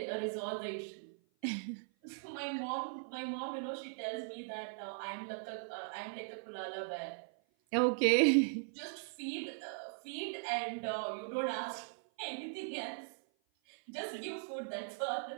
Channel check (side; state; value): left; silent; 52 dB below the other